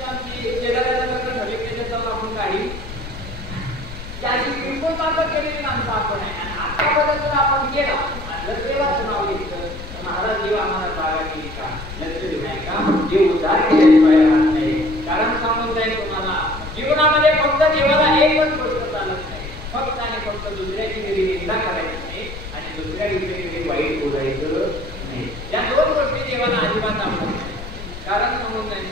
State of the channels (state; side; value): noise; left; rumble, 11 dB below the sound